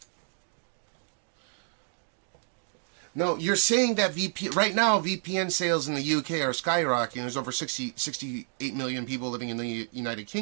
No, you're saying that right now VPN sales in the UK are skyrocketing. There's over 68 million people living in the United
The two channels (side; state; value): left; silent; digital silence